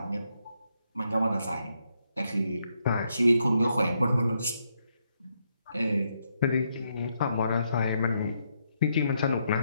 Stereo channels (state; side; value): inverted; both; correlation -0.78